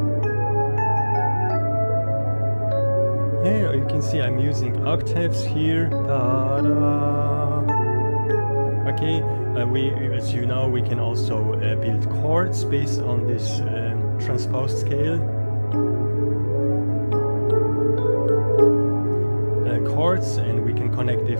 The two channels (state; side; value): inverted; both; correlation -1.00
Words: See, I'm using octaves here. Okay, as you know, we can also build chords based on this transposed scale. Chords, and we can connect